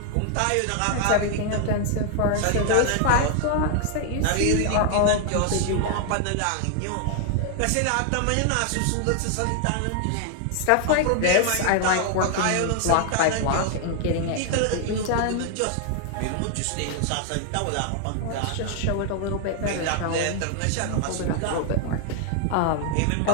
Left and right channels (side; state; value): both; different; correlation 0.00